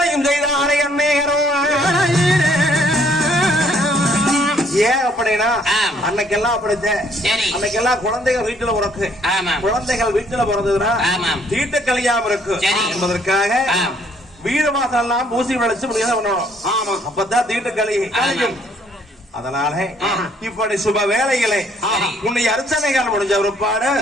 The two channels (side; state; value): both; normal; correlation 0.64